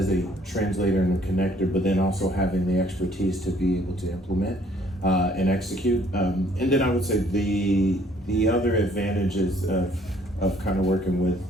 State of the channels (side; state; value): both; normal; correlation 0.61